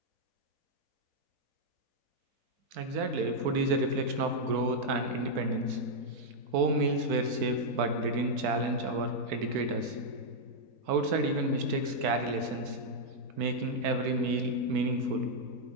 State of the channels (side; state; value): left; late; 4.5 ms